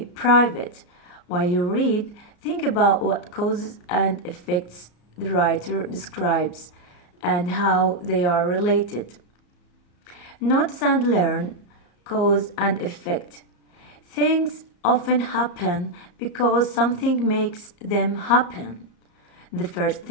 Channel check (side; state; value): right; late; 34 ms